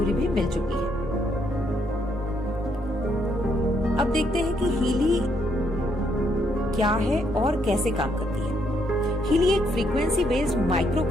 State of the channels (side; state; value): both; normal; correlation 0.73